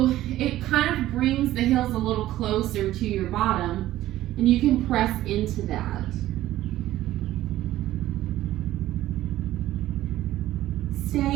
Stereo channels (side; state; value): left; quieter; 14.6 dB